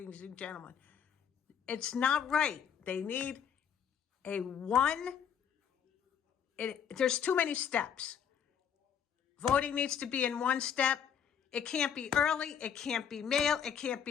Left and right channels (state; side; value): quieter; right; 8.2 dB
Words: and gentlemen. It's not right. They need a one there's too many steps. Voting needs to be in one step. It can't be early. It can't be mail. It can't